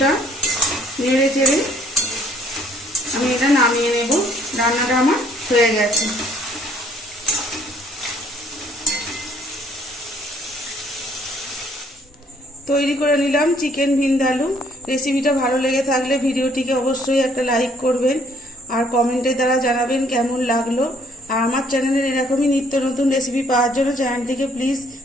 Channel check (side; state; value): both; normal; correlation 0.63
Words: নেড়ে চেড়ে আমি এটা নামিয়ে নেব। রান্নাটা আমার হয়ে গেছে। তৈরি করে নিলাম চিকেন ভিন্দালু। রেসিপিটা ভালো লেগে থাকলে ভিডিওটিকে অবশ্যই একটা লাইক করবেন আর কমেন্টের দ্বারা জানাবেন কেমন লাগলো। আর আমার চ্যানেলের এরকমই নিত্য নতুন রেসিপি পাওয়ার জন্য চ্যানেলটিকে প্লিজ